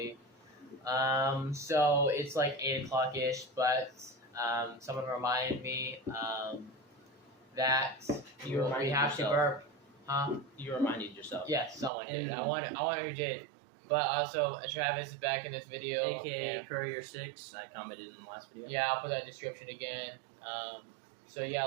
So it's like 8 o'clock-ish, but someone reminded me that we have to burp. Huh? You reminded yourself. Yes, someone did. I wonder who did. But also, Travis is back in this video. AKA Courier 6. I commented in the last video. Yeah, I'll put that in the description again. So yeah,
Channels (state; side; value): drops out; left; at 11.9 s